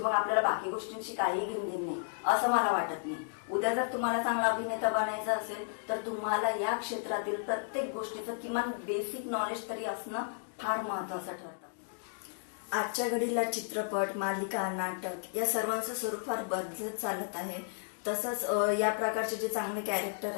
मग आपल्याला बाकी गोष्टींची काही घेणदेण नाही असं मला वाटत नाही. उद्या जर तुम्हाला चांगला अभिनेता बनायचं असेल तर तुम्हाला या क्षेत्रातील प्रत्येक गोष्टीचं किमान बेसिक नॉलेज तरी असणं फार महत्वाचं ठरतं. आजच्या घडीला चित्रपट, मालिका, नाटक या सर्वांचं स्वरूप फार बदलत चालत आहे. तसंच या प्रकारचे जे चांगले कॅरेक्टर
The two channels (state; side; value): silent; right; digital silence